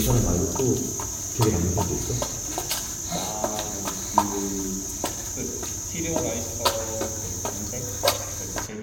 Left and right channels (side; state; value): both; identical; correlation 1.00